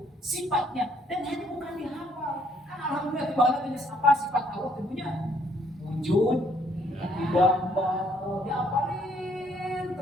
Sifatnya. Dan ini bukan dihafal. Kan alhamdulillah di bawah jenis apa sifat Allah tentunya? Wujud, gambar, diapalin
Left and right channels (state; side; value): normal; both; correlation 0.67